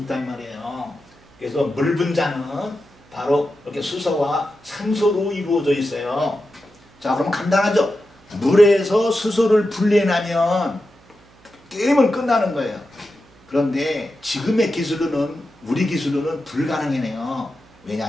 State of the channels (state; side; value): noise; right; hum, 28 dB below the sound